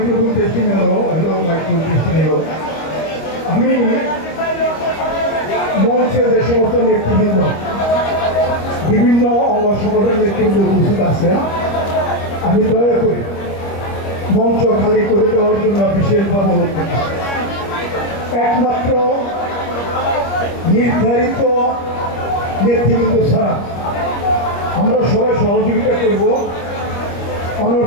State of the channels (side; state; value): right; late; 25 ms